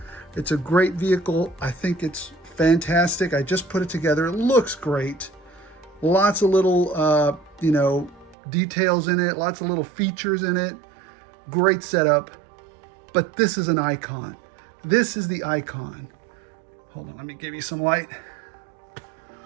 It's a great vehicle. I think it's fantastic. I just put it together. It looks great. Lots of little, you know, details in it. Lots of little features in it. Great setup. But this is an icon. This is the icon. Hold on, let me give you some light.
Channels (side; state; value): left; drops out; at 8.3 s